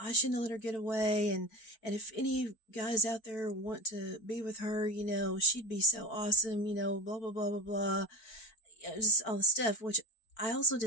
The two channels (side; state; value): right; late; 4.5 ms